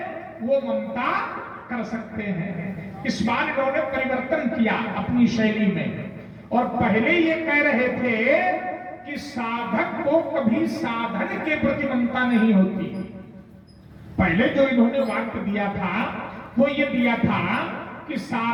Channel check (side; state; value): both; identical; correlation 1.00